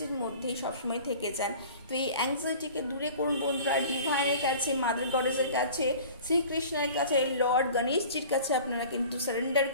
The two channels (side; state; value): both; inverted; correlation -0.43